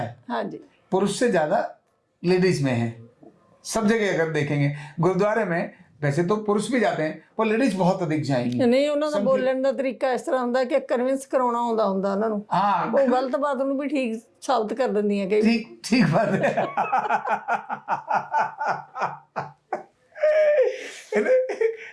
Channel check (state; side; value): identical; both; correlation 1.00